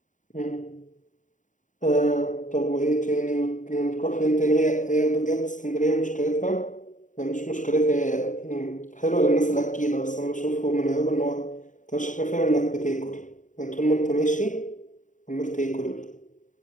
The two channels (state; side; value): late; right; 0.37 ms